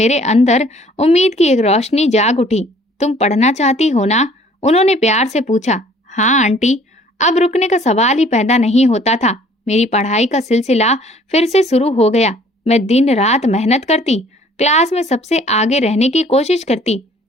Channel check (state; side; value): normal; both; correlation 0.56